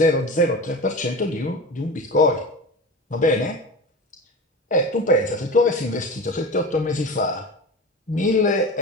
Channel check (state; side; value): normal; both; correlation 0.29